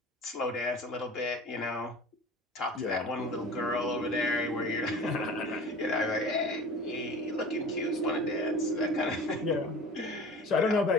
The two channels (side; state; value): both; normal; correlation 0.39